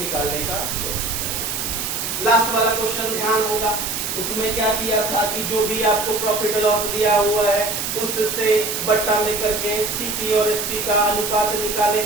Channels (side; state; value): right; noise; hiss, 3 dB below the sound